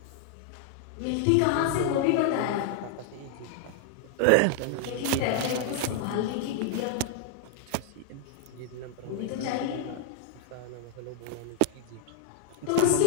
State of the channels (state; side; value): different; both; correlation 0.00